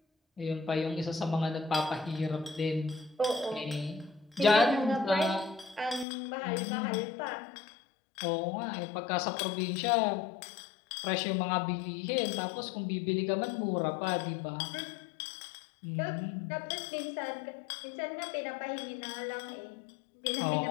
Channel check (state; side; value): drops out; right; at 6.1 s